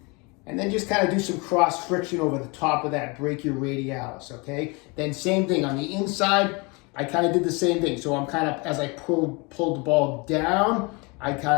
and then just kind of do some cross friction over the top of that brachioradialis, okay? Then same thing on the inside, I kind of did the same thing. So I'm kind of, as I pulled the ball down,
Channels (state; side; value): quieter; right; 28.7 dB